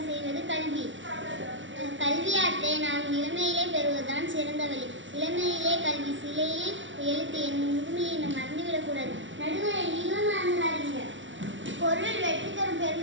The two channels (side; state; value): left; late; 0.55 ms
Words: செய்வது கல்வி. கல்வியாற்றை நாம் இளமையிலே பெறுவதுதான் சிறந்த வழி. இளமையிலே கல்வி சிலையில் எழுத்து என் முதுமையை நாம் மறந்துவிடக்கூடாது. நடுவரை நீங்களும் மறந்துடாதீங்க. பொருள் வெற்றி தரும்